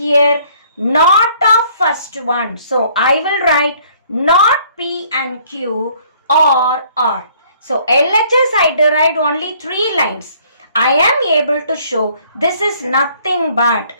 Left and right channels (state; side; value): inverted; both; correlation -0.60